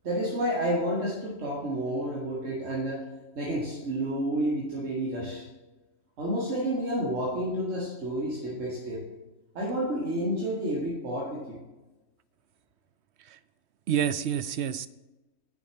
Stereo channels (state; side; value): late; left; 3.1 ms